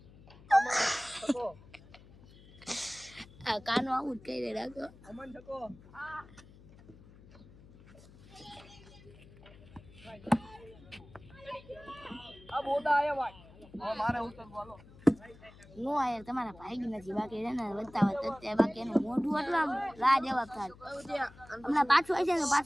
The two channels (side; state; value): left; noise; hum, 22 dB below the sound